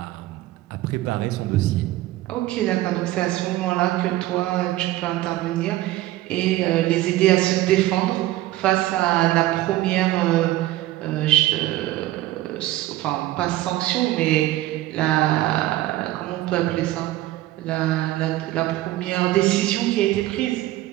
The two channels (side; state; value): left; quieter; 15.9 dB